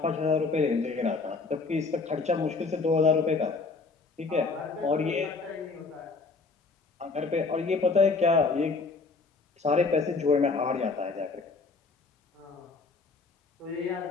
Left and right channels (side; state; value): right; quieter; 4.2 dB